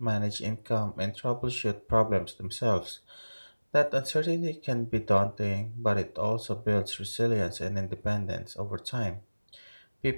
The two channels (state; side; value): inverted; both; correlation -1.00